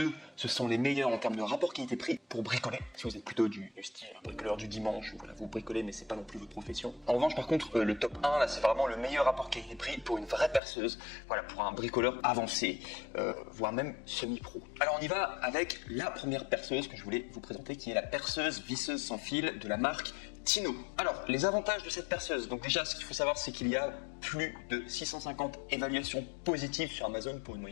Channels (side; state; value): right; drops out; at 10.6 s